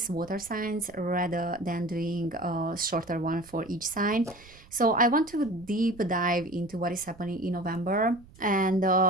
water signs, rather than doing a shorter one for each sign. So, I want to deep dive into what is happening in November and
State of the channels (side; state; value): right; noise; rumble, 24 dB below the sound